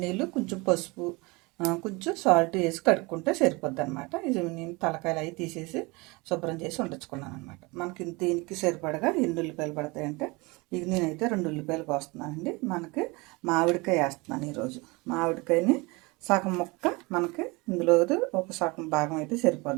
నీళ్ళు, కొంచెం పసుపు, కొంచెం సాల్ట్ వేసి కడుక్కుంటే సరిపోద్ది అనమాట. ఇది నేను తలకాయలు అవి తీసేసి శుభ్రం చేసి ఉండొచ్చుకున్నాను అనమాట. మనకి దీనికి సరిపడగా ఎన్ని ఉల్లిపాయలు పడతాయంటే ఇది నేనైతే 2 ఉల్లిపాయలు కోస్తున్నానండి. మనకి మామిడికాయ వేస్తున్నాను ఈరోజు. మామిడికాయని సగం ముక్క మనకి ఇందులో ఒక సగం భాగం అయితే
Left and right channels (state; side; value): quieter; left; 25.5 dB